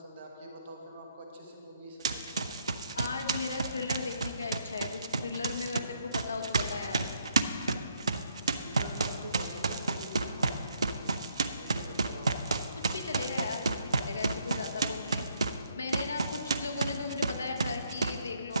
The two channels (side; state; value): both; inverted; correlation -0.70